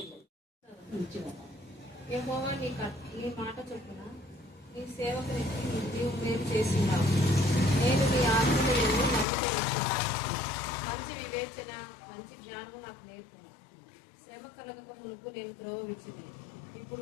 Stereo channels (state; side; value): drops out; right; at 9.2 s